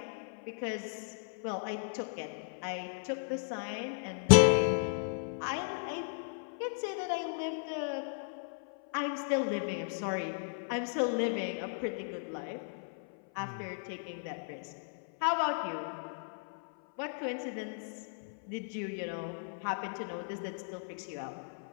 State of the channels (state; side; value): silent; right; 54 dB below the other